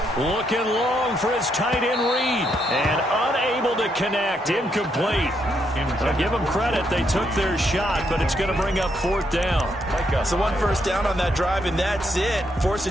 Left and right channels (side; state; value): both; normal; correlation 0.76